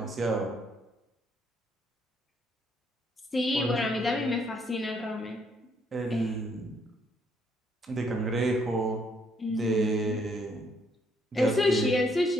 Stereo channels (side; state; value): both; normal; correlation 0.70